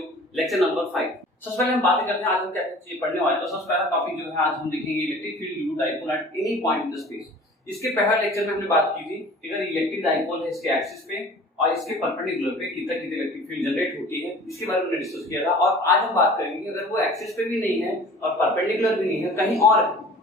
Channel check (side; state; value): both; normal; correlation 0.45